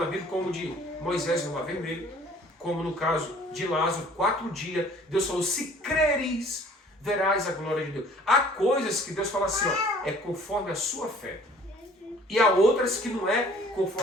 Bíblia, como de Moisés no Mar Vermelho, como no caso de Lázaro, 4 dias, Deus falou, se creres, verás a glória de Deus. Há coisas que Deus fala assim, é conforme a sua fé. E há outras que não é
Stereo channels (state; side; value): normal; both; correlation 0.53